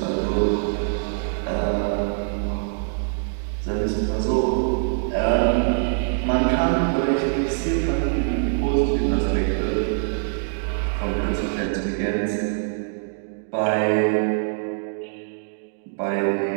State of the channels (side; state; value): left; silent; digital silence